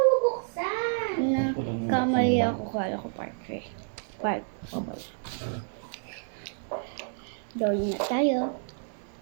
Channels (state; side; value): silent; left; digital silence